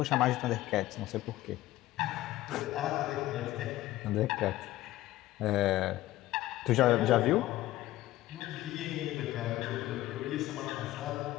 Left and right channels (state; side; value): quieter; right; 16.0 dB